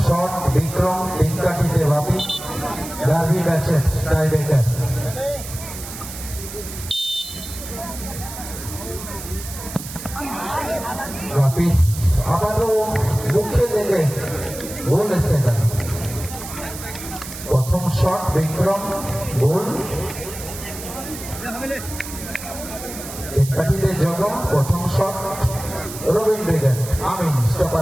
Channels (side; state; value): right; noise; hiss, 11 dB below the sound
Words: শট বিক্রম 3 কাঠিতে বাপি। ডার্বি ম্যাচের টাইব্রেকার। বাপি আবারও মুখে লেগে গোল এসে গেল। প্রথম শট বিক্রম গোল। কাঠিতে জগম প্রথম shot Robin brigade Amin